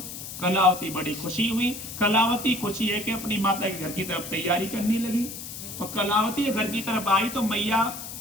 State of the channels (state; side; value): noise; left; hiss, 10 dB below the sound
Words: कलावती बड़ी खुशी हुई। कलावती खुशी है कि अपनी माता के घर की तरफ तैयारी करने लगी। और कलावती घर की तरफ आई तो मैया